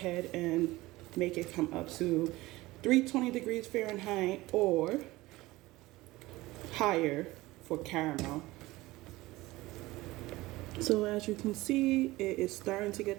and make it come up to 320 degrees Fahrenheit or higher for caramel. So as you can see, it is starting to get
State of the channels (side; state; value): left; quieter; 19.3 dB